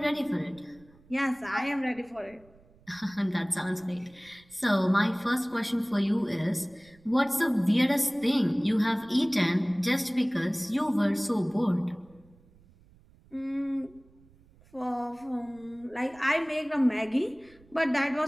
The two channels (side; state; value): right; noise; rumble, 28 dB below the sound